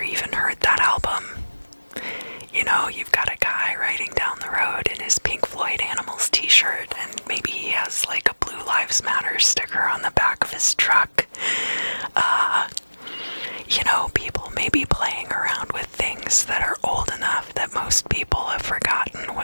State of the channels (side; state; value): both; inverted; correlation -1.00